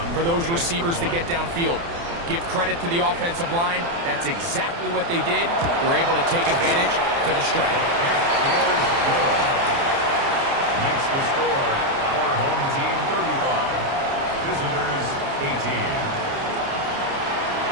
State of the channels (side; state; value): left; late; 29 ms